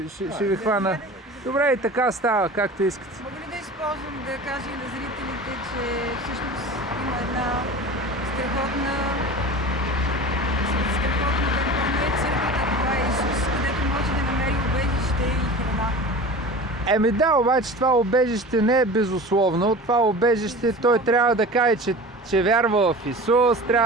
ви хвана. Добре, и така става, както искате. Мога ли да използвам да кажа и на зрителите, че всъщност има една страхотна не е църквата, това е Исус, където може да намери убежище и храна. Да, обаче това убежище не е безусловно. Това убежище той трябва да каже, че вярва в Исус,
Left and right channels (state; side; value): normal; both; correlation 0.36